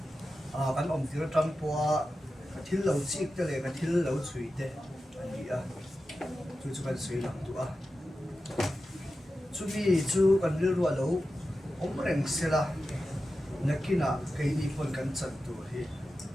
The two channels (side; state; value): both; normal; correlation 0.92